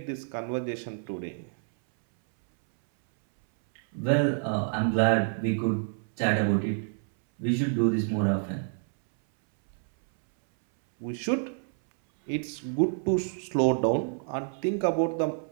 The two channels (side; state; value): left; silent; 59 dB below the other